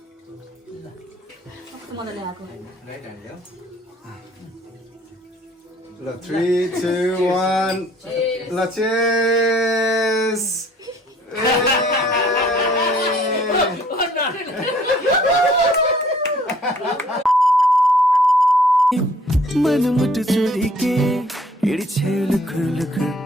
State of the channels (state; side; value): normal; both; correlation 0.58